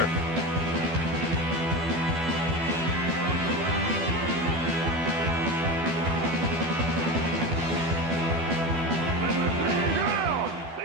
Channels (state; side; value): late; left; 12 ms